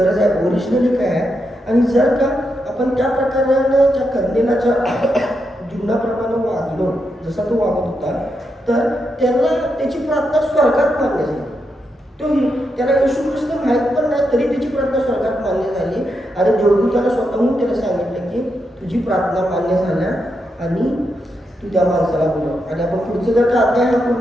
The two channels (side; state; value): both; normal; correlation 0.83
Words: आहे, ओरिजिनली काय आहे. आणि जर का आपण त्या प्रकारानं त्या कर्नेलाच्या जीवनाप्रमाणे वागलो जसा तो वागत होता तर त्याला त्याची प्रार्थना स्वर्गात मान्य झाली. तो त्याला येशू ख्रिस्त माहीत पण नाही, तरी त्याची प्रार्थना स्वर्गात मान्य झाली आणि देवदूताला स्वतःहून त्याला सांगितलं की तुझी प्रार्थना मान्य झाल्या आणि तू त्या माणसाला बोलव. आणि आपण पुढचं जर का अध्याय हा